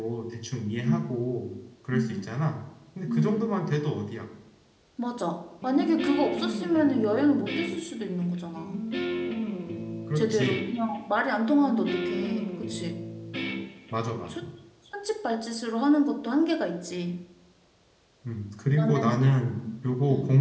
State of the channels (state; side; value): identical; both; correlation 1.00